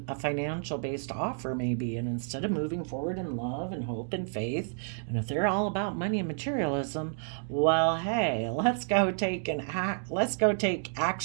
a financial based offer, maybe, and instead of moving forward in love and hope and faith, and if they're all about money and materialism, well, hey, let's go take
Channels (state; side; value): silent; left; digital silence